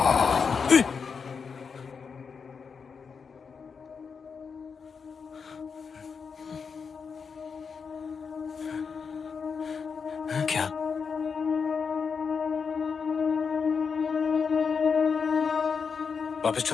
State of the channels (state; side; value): quieter; right; 5.7 dB